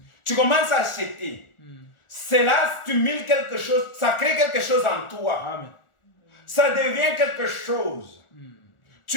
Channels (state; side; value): late; right; 1.4 ms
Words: Tu commences à acheter. Cela stimule quelque chose, ça crée quelque chose en toi. Amen. Ça devient quelque chose.